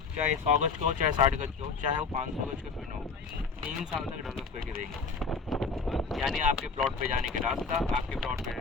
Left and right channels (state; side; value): quieter; right; 4.7 dB